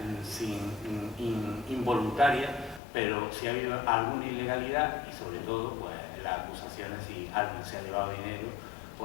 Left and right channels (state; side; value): drops out; right; at 2.8 s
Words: involuntaria, pero si ha habido alguna ilegalidad y sobre todo pues las acusaciones si alguien se ha llevado dinero